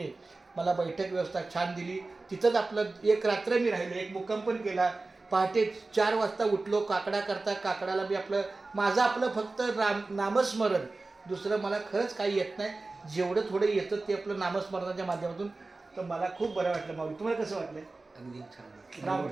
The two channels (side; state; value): left; quieter; 3.4 dB